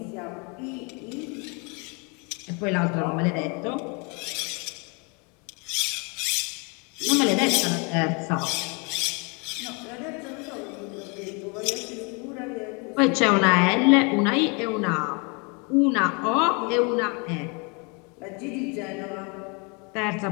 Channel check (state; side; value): quieter; right; 32.4 dB